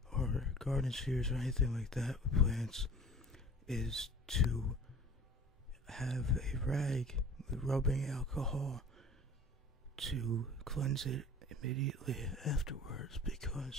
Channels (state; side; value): normal; both; correlation 0.43